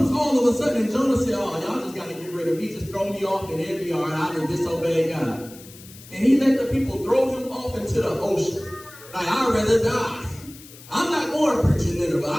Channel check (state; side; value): noise; left; hiss, 19 dB below the sound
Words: all of a sudden? And Jonah said, oh, y'all just got to get rid of me. Just throw me off and it'll be all right. I didn't disobey God. And he let the people throw him off into the ocean. Like, I'd rather die. I'm not going to preach in Nineveh.